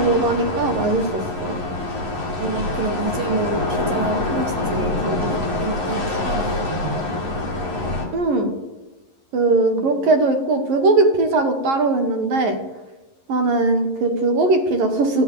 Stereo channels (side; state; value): left; late; 11 ms